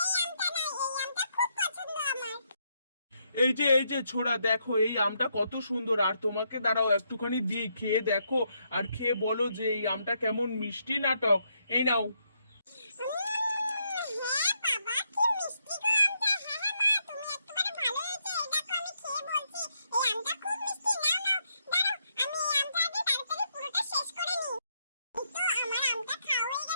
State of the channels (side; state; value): both; inverted; correlation -0.77